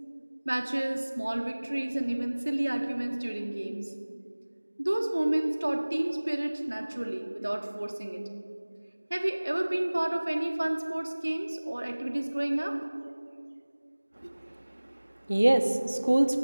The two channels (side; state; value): both; inverted; correlation -1.00